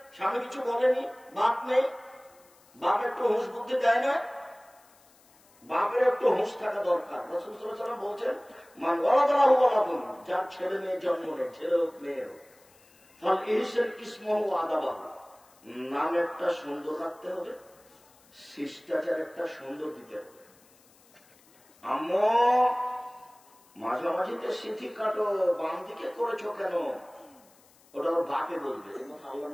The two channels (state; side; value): noise; left; hiss, 29 dB below the sound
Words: স্বামী কিছু বলেনি, বাপ নেই, বাপ একটু হুঁশ বুদ্ধি দেয় না। বাপের একটু হুঁশ থাকা দরকার। রাসূল সাল্লাল্লাহু আলাইহি ওয়াসাল্লাম বলছেন, মান ওয়ালাদাহু ওয়ালাদুন, যার ছেলে মেয়ে জন্ম নেয়, ছেলে হোক মেয়ে হোক, ফাল ইহসান ইসমহু ওয়া আদাবাহু, নাম একটা সুন্দর রাখতে হবে, শিষ্টাচার একটা সুন্দর দিতে হবে। আম্মু মাঝামাঝিতে সিথি কাটো, বাম দিকে করেছো কেন? ওটা ওর বাপে বলবে। আল্লাহ